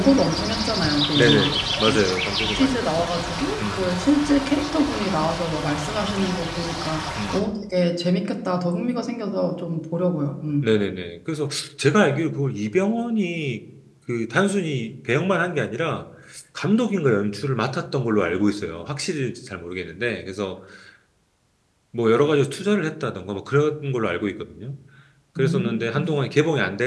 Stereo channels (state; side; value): identical; both; correlation 1.00